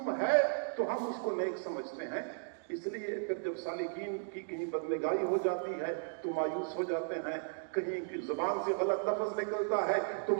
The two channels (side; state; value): left; silent; digital silence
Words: ہے تو ہم اس کو نیک سمجھتے ہیں۔ اس لیے پھر جب سالکین کی کہیں بدنگاہی ہو جاتی ہے تو مایوس ہو جاتے ہیں، کہیں زبان سے غلط لفظ نکلتا ہے تو